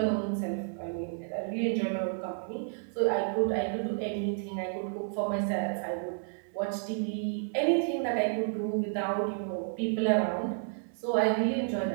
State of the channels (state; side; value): silent; left; 56 dB below the other